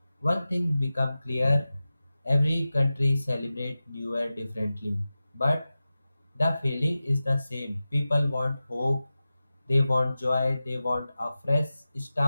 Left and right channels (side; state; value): both; inverted; correlation -0.95